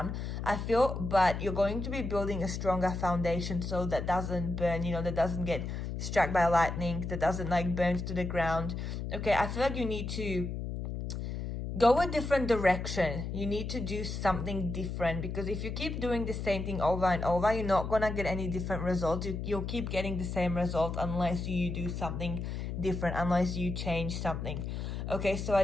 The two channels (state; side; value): noise; left; hum, 4 dB below the sound